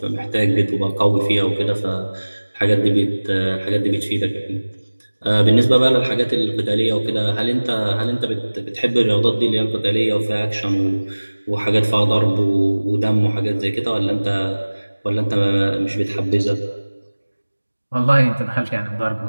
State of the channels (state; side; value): inverted; both; correlation -1.00